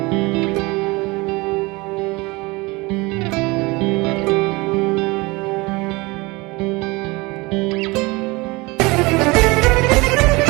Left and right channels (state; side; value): quieter; left; 24.2 dB